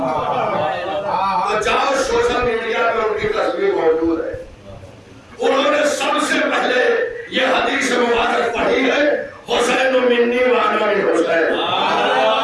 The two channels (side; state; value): both; identical; correlation 1.00